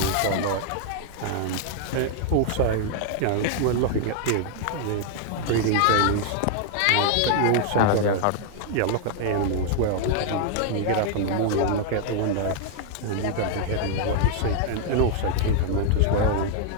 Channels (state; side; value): different; both; correlation 0.00